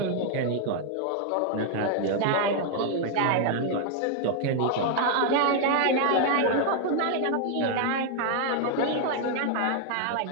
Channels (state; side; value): different; both; correlation 0.00